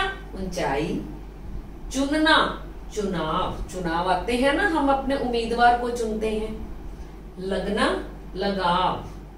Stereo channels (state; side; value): identical; both; correlation 1.00